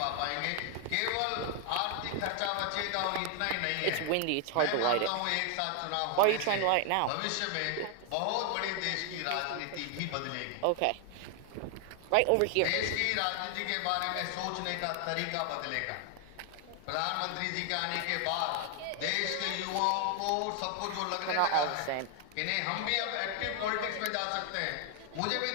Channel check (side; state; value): both; different; correlation 0.00